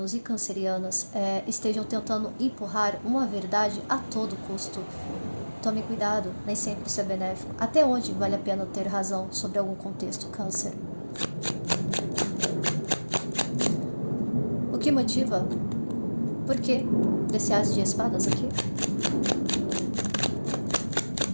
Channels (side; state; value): both; inverted; correlation -1.00